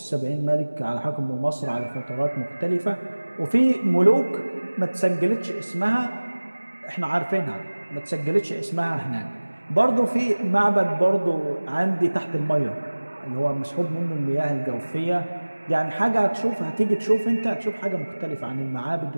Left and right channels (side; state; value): both; inverted; correlation -1.00